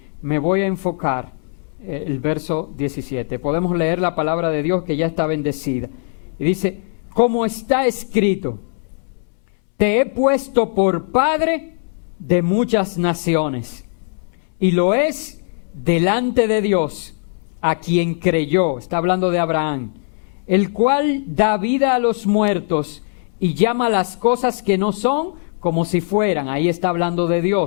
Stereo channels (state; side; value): silent; right; 65 dB below the other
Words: me voy a enfocar, el verso 17. Podemos leer la palabra de Dios que ya está bendecida. Y dice, como está escrito, te he puesto por padre de muchas naciones, y lo es delante de Dios, a quien creyó, está hablando de Abraham, el cual da vida a los muertos y llama las cosas que no son como si fueran. Ahí está hablando de